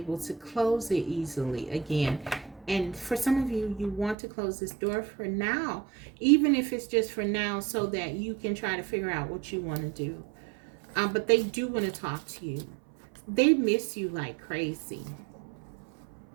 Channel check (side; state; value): left; drops out; at 4.2 s